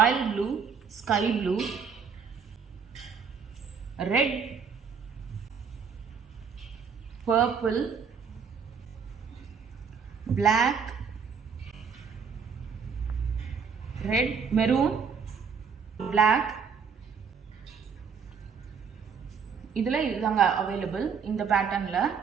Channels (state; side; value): quieter; left; 6.2 dB